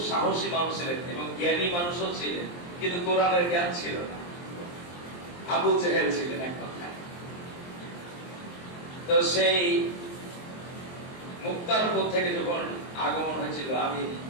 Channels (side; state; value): right; late; 23 ms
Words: সাহসী মানুষ ছিলেন এবং জ্ঞানী মানুষও ছিলেন, কিন্তু কোরআনের জ্ঞান ছিল না। আবু জেহেল ছিলেন এক কথায়। তো সেই মুক্তারপুর থেকে যখন আগমন হয়েছিল, আমি